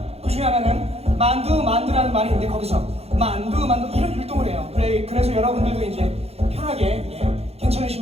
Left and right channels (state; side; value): late; left; 0.30 ms